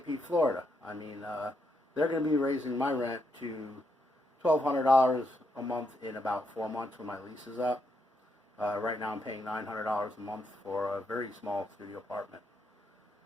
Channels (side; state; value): both; normal; correlation 0.79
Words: Pete, Florida. They're going to be raising my rent to $1,200 a month in about 4 months when my lease is up. Right now I'm paying $900 a month for a very small studio apartment.